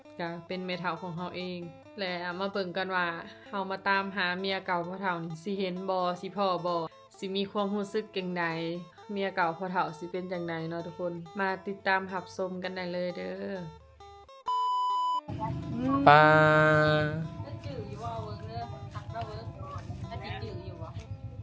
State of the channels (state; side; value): identical; both; correlation 1.00